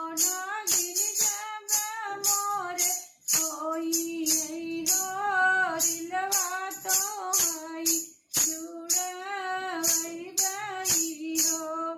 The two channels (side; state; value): both; identical; correlation 1.00